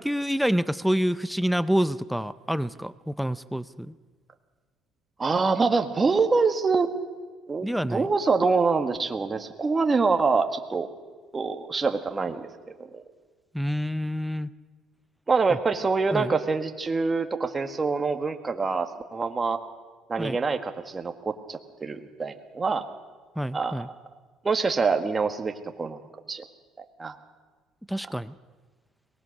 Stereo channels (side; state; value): left; quieter; 3.1 dB